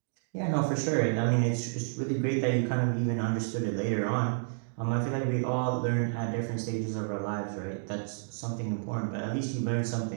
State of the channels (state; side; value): silent; left; digital silence